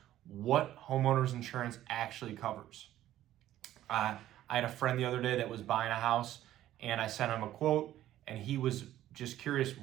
what homeowners insurance actually covers. I had a friend the other day that was buying a house and I sent him a quote and he was just curious,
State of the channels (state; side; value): quieter; left; 13.3 dB